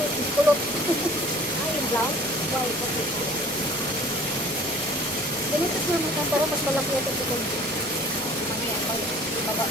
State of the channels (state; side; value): normal; both; correlation 0.49